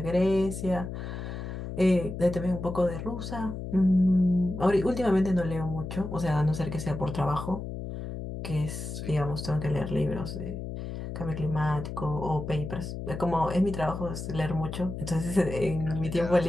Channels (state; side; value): noise; left; hum, 7 dB below the sound